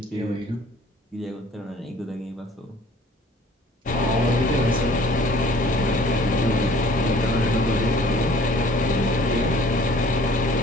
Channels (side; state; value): both; normal; correlation 0.53